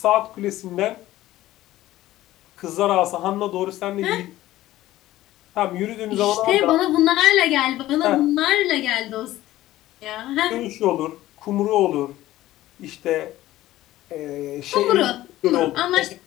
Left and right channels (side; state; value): right; quieter; 15.4 dB